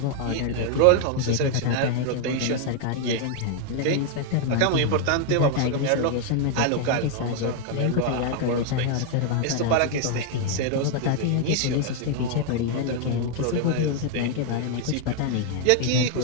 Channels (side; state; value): both; different; correlation 0.00